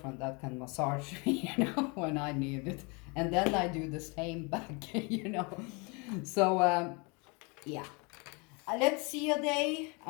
that can massage me, when I need it. And then I do the same back, So, yeah. Let's see a day.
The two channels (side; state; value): right; quieter; 30.3 dB